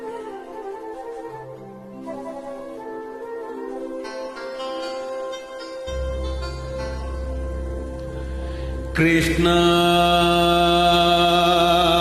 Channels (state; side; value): identical; both; correlation 1.00